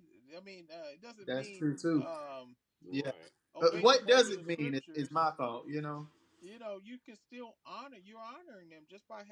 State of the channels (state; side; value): identical; both; correlation 1.00